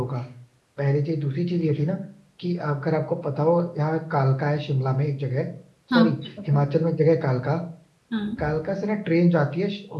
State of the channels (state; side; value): identical; both; correlation 1.00